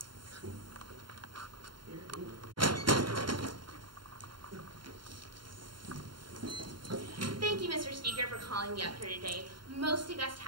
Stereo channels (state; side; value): late; left; 0.72 ms